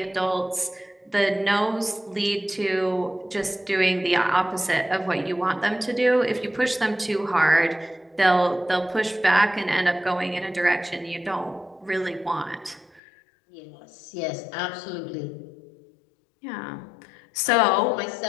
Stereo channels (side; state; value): right; drops out; at 13.0 s